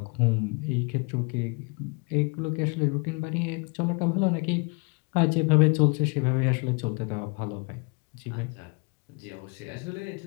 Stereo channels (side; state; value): right; quieter; 32.8 dB